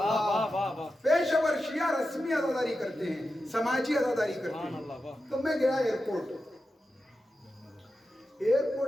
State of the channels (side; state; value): both; normal; correlation 0.91